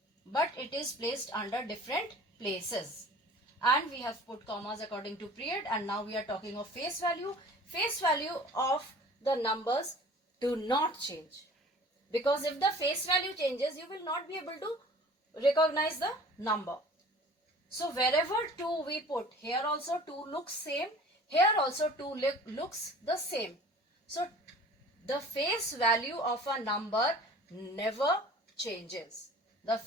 but it is placed under different places. And we have put commas according to period, and now we are talking of face value. Face value of the numbers do not change, because if the face value changes, you will not be able to recognize the number. So wherever 2 we put, here also 2 looks same, here also 2 looks the same. So the face value of a number never changes. The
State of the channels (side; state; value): both; normal; correlation 0.45